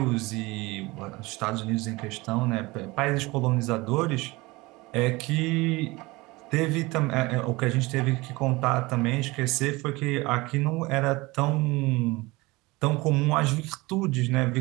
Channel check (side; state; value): left; quieter; 22.5 dB